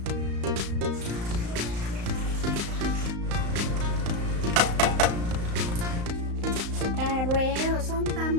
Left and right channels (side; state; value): left; late; 34 ms